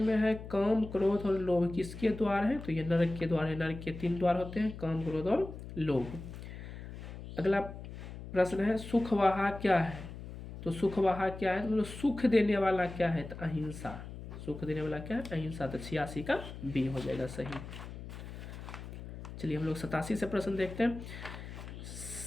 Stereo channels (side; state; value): left; noise; hum, 11 dB below the sound